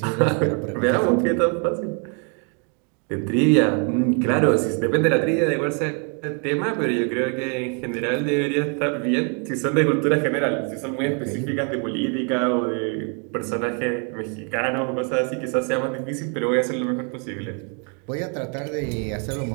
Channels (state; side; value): quieter; left; 39.0 dB